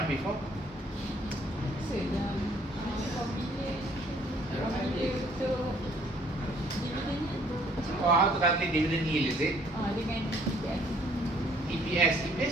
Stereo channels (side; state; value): both; normal; correlation 0.61